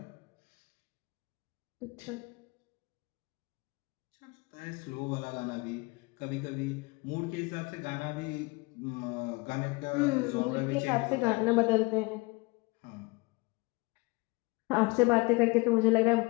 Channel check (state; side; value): quieter; right; 25.5 dB